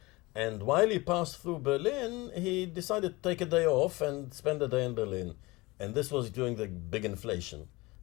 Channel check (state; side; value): quieter; right; 22.6 dB